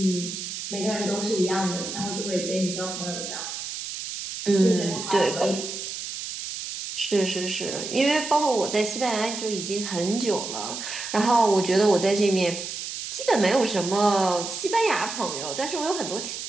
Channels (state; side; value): noise; right; hiss, 7 dB below the sound